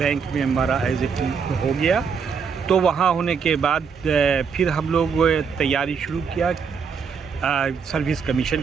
में हमारा एज ए हो गया। तो वहाँ होने के बाद फिर हम लोग तैयारी शुरू किया सर्विस कमीशन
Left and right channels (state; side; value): quieter; left; 6.1 dB